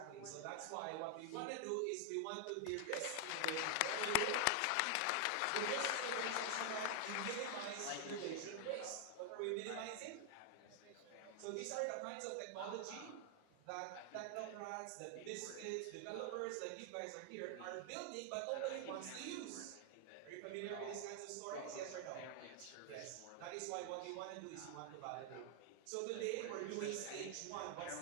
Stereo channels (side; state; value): both; different; correlation 0.00